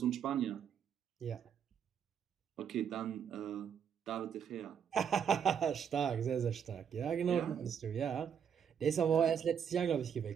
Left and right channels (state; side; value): quieter; left; 7.9 dB